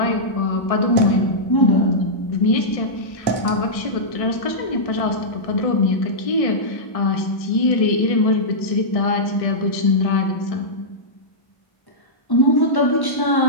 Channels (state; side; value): late; right; 1.6 ms